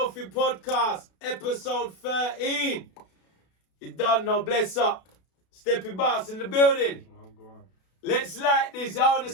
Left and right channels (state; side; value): late; right; 32 ms